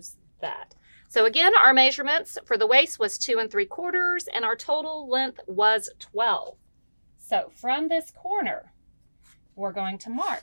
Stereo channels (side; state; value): both; inverted; correlation -1.00